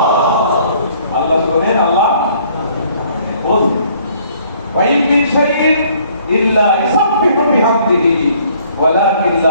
আল্লাহ শোনেন, আল্লাহ বলেন وَإِن مِّن شَيْءٍ إِلَّا يُسَبِّحُ بِحَمْدِهِ وَلَكِن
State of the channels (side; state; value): both; inverted; correlation -0.60